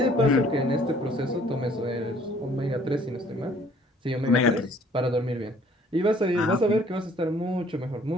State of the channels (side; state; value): both; normal; correlation 0.58